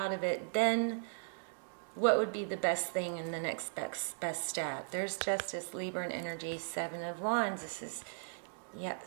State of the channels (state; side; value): silent; left; digital silence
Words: of it, then what would be the best thing in the next best step? There's Justice, Libra, and energy, 7 of Wands. This is, yeah,